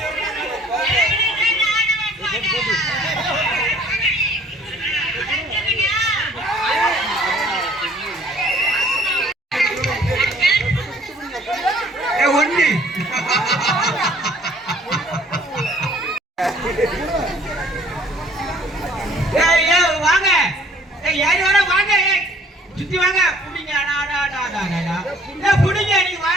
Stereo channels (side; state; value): both; normal; correlation 0.57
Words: ஒண்ணு வாங்க யாரு வர வாங்க சுத்தி வாங்க புடிங்க புடிங்க நீ